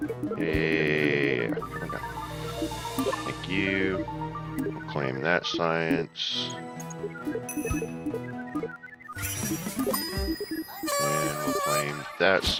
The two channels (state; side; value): identical; both; correlation 1.00